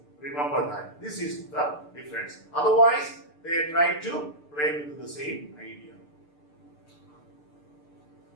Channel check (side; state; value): right; late; 6.7 ms